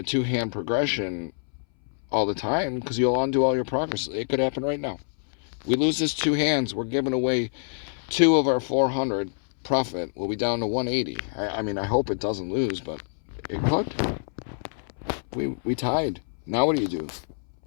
2-hand progression all the time because you'll undo all your progress. It could happen right now. We lose this 2 hands, we're giving away 2 of our 400 profit. We'll be down to 180. I mean, I hope it doesn't lose, but it could. We tied. Now what do? You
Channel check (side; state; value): right; silent; 61 dB below the other